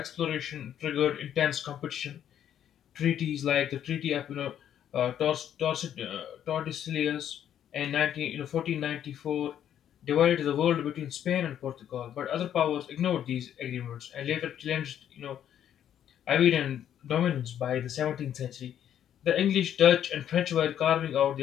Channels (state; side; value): quieter; right; 10.1 dB